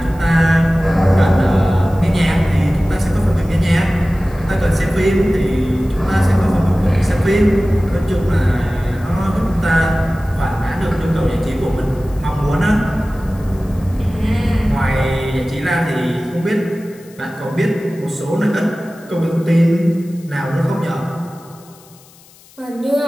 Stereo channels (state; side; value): noise; left; hiss, 26 dB below the sound